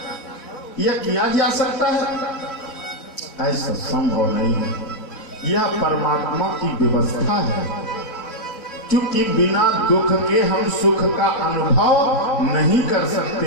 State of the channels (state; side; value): late; right; 4.0 ms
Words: या किया जा सकता है? ऐसा संभव नहीं है। यह परमात्मा की व्यवस्था है, क्योंकि बिना दुख के हम सुख का अनुभव नहीं कर